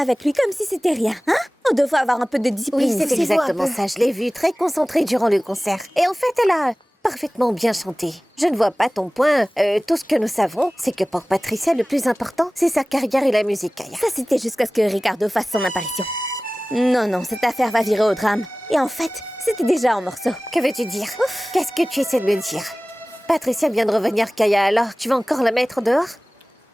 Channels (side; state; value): both; normal; correlation 0.98